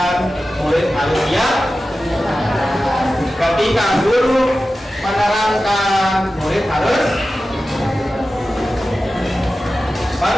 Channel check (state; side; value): normal; both; correlation 0.94